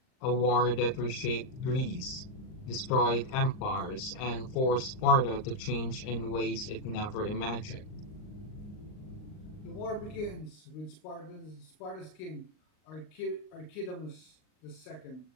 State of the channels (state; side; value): late; right; 39 ms